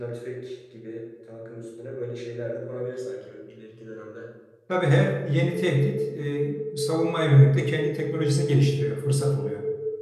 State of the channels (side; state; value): both; identical; correlation 1.00